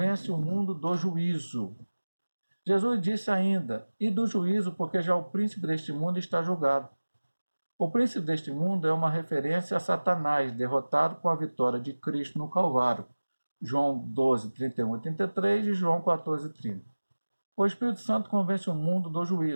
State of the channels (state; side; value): inverted; both; correlation -1.00